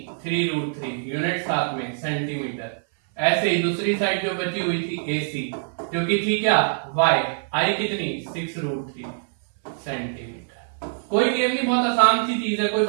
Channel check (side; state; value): left; silent; 58 dB below the other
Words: 3√3, यूनिट साथ में सेंटीमीटर। ऐसे ही दूसरी साइड जो बची हुई थी AC जो कि थी क्या y, I कितनी 6√3 सेंटीमीटर। कोई गेम नहीं, बहुत आसान सी चीज है, कोई